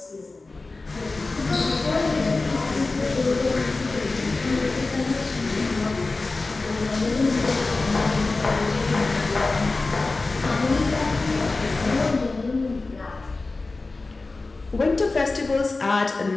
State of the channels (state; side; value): quieter; right; 3.5 dB